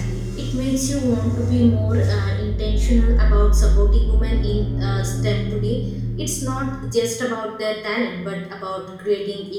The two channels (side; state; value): both; identical; correlation 1.00